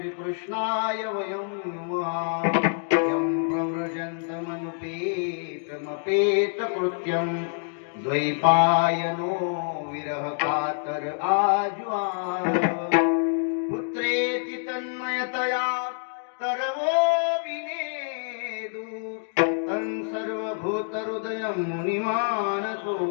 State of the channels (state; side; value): silent; right; digital silence